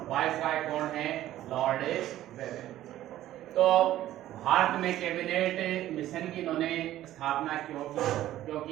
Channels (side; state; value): left; quieter; 13.7 dB